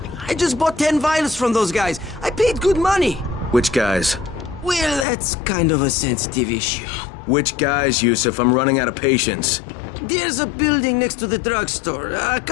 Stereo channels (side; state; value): right; drops out; at 5.1 s